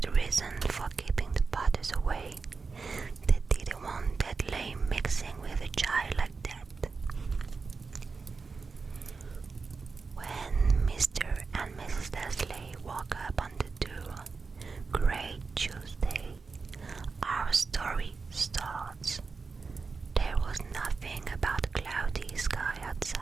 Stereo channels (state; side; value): quieter; left; 4.6 dB